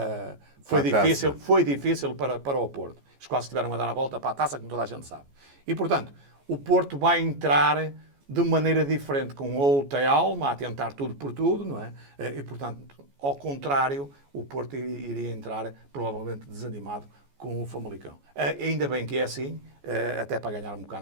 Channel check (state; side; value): late; left; 14 ms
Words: foi difícil para o Porto. Eles quase tiveram a dar a volta para a taça, como toda a gente sabe. E, portanto, o Porto vai entrar de maneira diferente, com outra alma, a tentar tudo por tudo, não é? E, portanto, ao contrário, o Porto iria entrar provavelmente desanimado com o Famalicão. Ainda bem que é assim, até para ganhar um